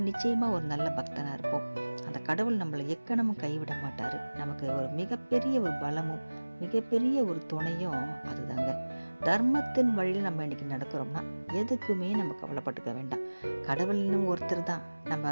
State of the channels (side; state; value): both; inverted; correlation -1.00